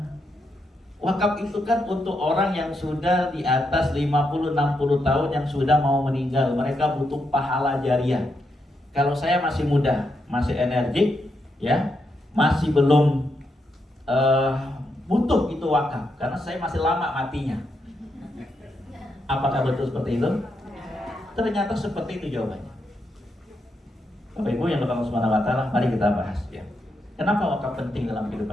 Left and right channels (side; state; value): both; normal; correlation 0.82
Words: Wakaf itu kan untuk orang yang sudah di atas 50-60 tahun yang sudah mau meninggal. Mereka butuh pahala jariah. Kalau saya masih muda, masih energik, ya, masih belum butuh itu wakaf, karena saya masih lama matinya. Apakah betul seperti itu? Ternyata seperti itu jawabannya. Bapak Ibu yang Allah Subhanahu wa taala, mari kita bahas ya. Kenapa wakaf penting dalam